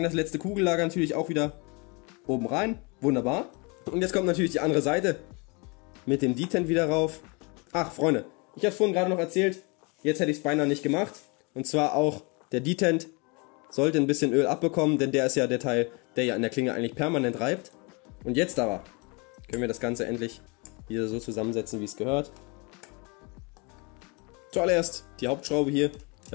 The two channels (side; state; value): right; quieter; 30.2 dB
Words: das letzte Kugellager natürlich auch wieder oben rein. Wunderbar. Und jetzt kommt natürlich die andere Seite mit dem Detent wieder rauf. Ach Freunde, ich habe vorhin gerade noch erzählt, jetzt hätte ich es beinahe nicht gemacht. Und zwar auch der Detent sollte ein bisschen Öl abbekommen, denn der ist ja der Teil, der ja an der Klinge eigentlich permanent reibt. Und jetzt aber können wir das Ganze endlich wieder so zusammensetzen, wie es gehört. Zuallererst die Hauptschraube hier,